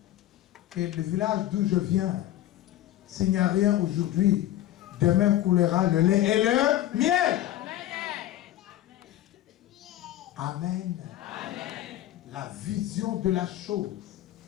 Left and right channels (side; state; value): right; quieter; 13.6 dB